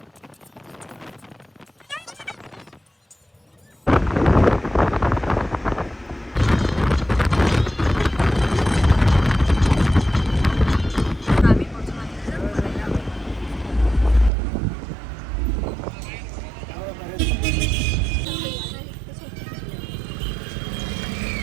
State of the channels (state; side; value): drops out; left; at 14.3 s